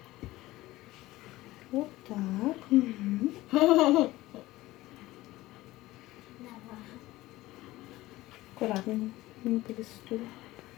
Вот так. Угу. Аккуратно. Не перестуй.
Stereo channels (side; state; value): right; quieter; 17.8 dB